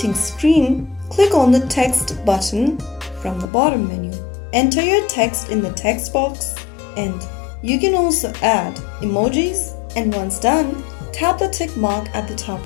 screen, click on the text button from the bottom menu. Enter your text in the text box and you can also add emojis, and once done, tap the tick mark at the top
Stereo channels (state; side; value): drops out; right; at 3.5 s